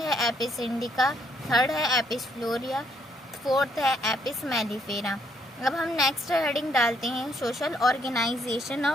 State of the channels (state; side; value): normal; both; correlation 0.71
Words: है एपिस इंडिका, थर्ड है एपिस फ्लोरिया, फोर्थ है एपिस मेलिफेरा। अब हम नेक्स्ट हेडिंग डालते हैं social organisation